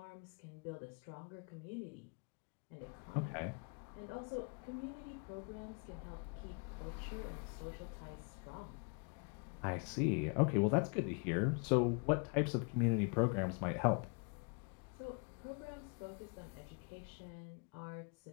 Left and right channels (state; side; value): quieter; right; 36.9 dB